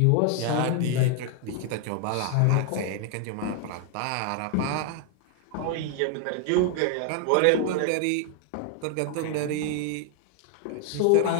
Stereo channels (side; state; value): both; different; correlation 0.00